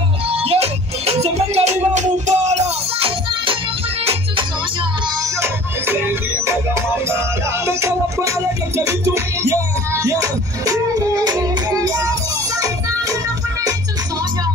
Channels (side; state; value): both; normal; correlation 0.47